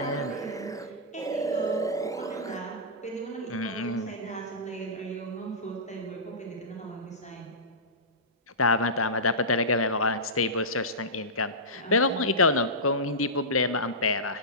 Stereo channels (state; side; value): normal; both; correlation -0.18